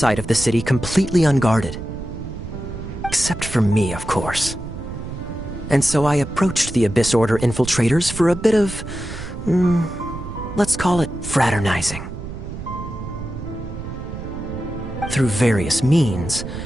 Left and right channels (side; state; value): right; noise; rumble, 9 dB below the sound